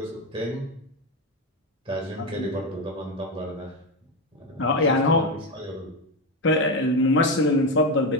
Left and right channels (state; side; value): normal; both; correlation 0.12